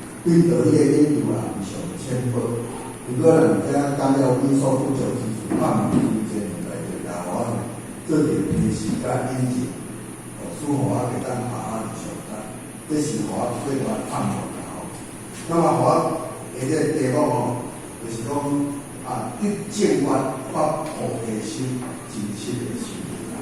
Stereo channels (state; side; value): identical; both; correlation 1.00